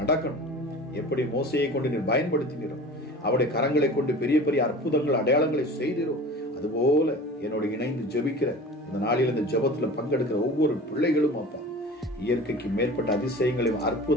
நடக்கணும். எப்படி மோசையை கொண்டு நீர் பயன்படுத்தினீரோ, அவருடைய கரங்களை கொண்டு பெரிய பெரிய அற்புதங்கள் அடையாளங்களை செய்தீரோ, அதுபோல என்னோட இணைந்து ஜெபிக்கிற இந்த நாளில் இந்த ஜெபத்துல பங்கெடுக்கிற ஒவ்வொரு பிள்ளைகளும் அப்பா இயற்கைக்கு மேற்பட்ட அதிசயங்களையும்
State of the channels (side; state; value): both; normal; correlation 0.39